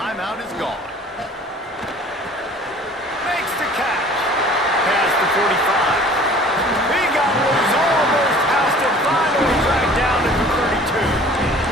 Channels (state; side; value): normal; both; correlation 0.48